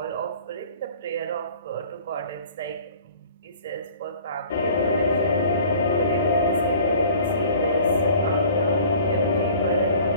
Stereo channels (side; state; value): both; inverted; correlation -0.49